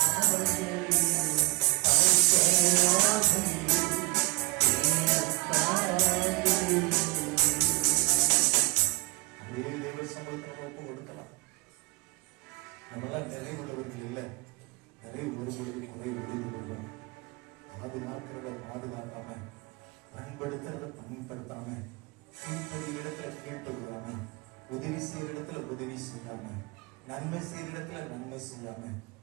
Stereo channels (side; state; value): left; quieter; 25.1 dB